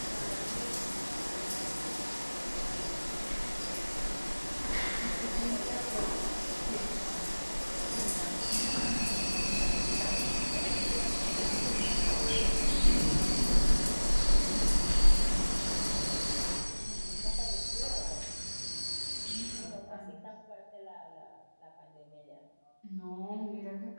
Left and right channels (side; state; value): both; inverted; correlation -1.00